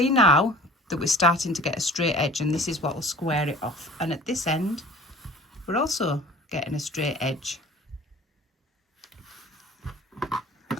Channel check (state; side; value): normal; both; correlation 0.45